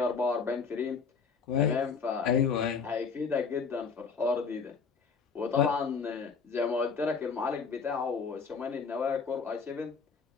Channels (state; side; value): quieter; right; 5.5 dB